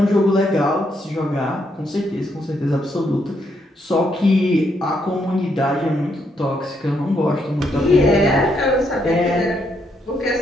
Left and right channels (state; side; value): normal; both; correlation 0.76